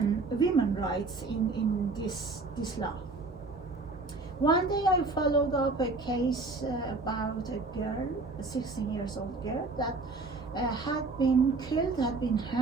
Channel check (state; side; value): quieter; left; 3.6 dB